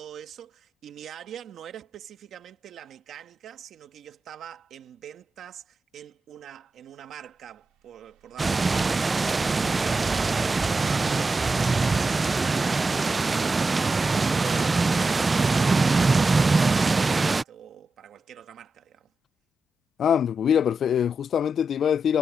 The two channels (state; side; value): normal; both; correlation 0.89